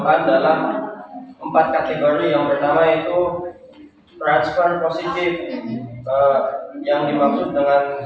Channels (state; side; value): identical; both; correlation 1.00